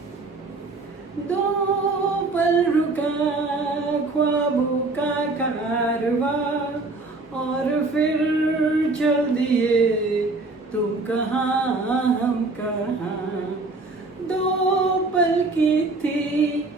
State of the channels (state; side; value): quieter; left; 3.4 dB